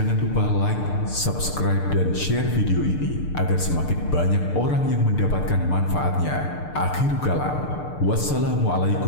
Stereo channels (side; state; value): right; late; 6.7 ms